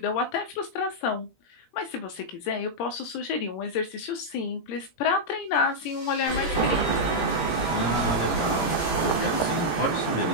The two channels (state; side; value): late; right; 17 ms